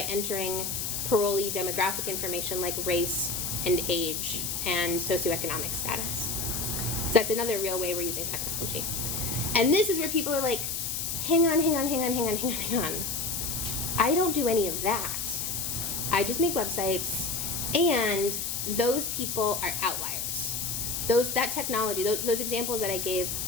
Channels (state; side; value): noise; left; hiss, 2 dB below the sound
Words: parolee demographic information like race and age and socioeconomic status. So that's another real way we're using technology. And this is where people are like, hang on. I don't do any of that. I just make websites, and those people are outliers. That technology, those examples that I gave,